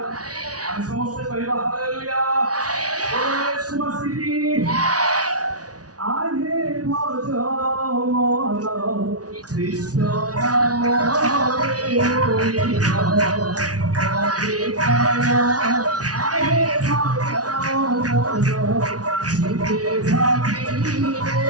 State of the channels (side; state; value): left; late; 0.68 ms